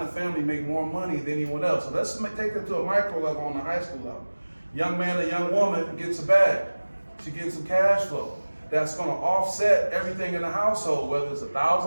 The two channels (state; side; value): inverted; both; correlation -1.00